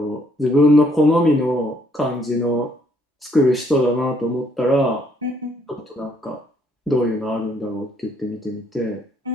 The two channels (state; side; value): normal; both; correlation 0.68